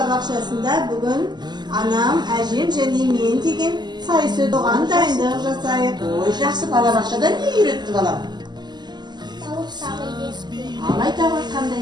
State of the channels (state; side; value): late; left; 0.21 ms